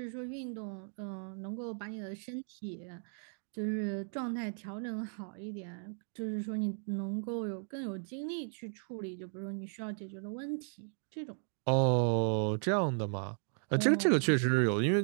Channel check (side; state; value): left; silent; 54 dB below the other